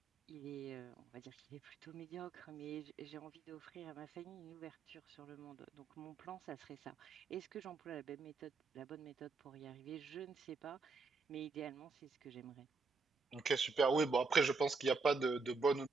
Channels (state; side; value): quieter; left; 4.2 dB